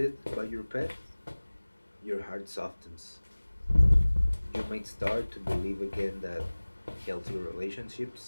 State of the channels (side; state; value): both; inverted; correlation -1.00